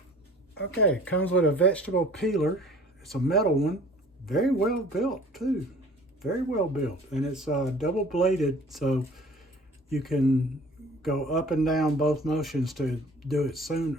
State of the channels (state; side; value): normal; both; correlation 0.49